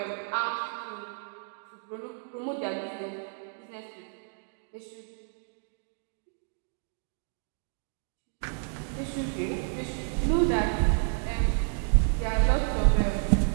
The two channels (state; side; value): silent; left; 58 dB below the other